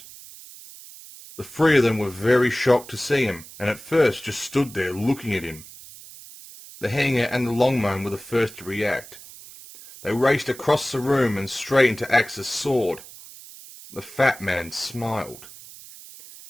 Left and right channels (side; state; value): right; noise; hiss, 17 dB below the sound